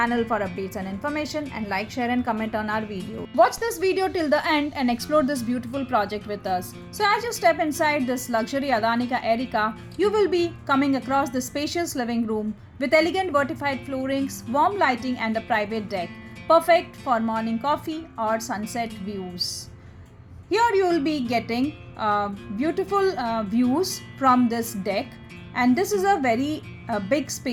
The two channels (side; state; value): both; identical; correlation 1.00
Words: for updates and information, and like, share and comment on our video. Watch this video till the end and explore this beautiful project with us. So as you step inside this luxury Adani Erica, you will be coming across the spacious living room with elegant vertified floorings, warm lighting and a private deck, perfect for morning coffee or sunset views. Here you will be getting beautiful views from this deck, and this is a very big